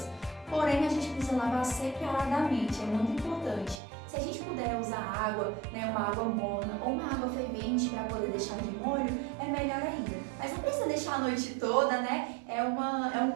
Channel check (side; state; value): left; drops out; at 3.8 s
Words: Porém, a gente precisa lavar separadamente, é muito importante. Se a gente puder usar água, né, uma água morna ou uma água fervente para poder deixar de molho, é melhor ainda. Mas não precisa deixar a noite toda, né? É um